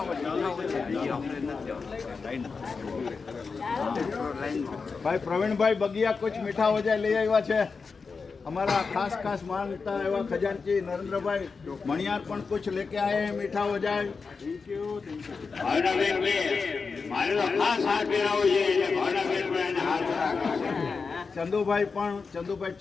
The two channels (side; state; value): right; quieter; 4.9 dB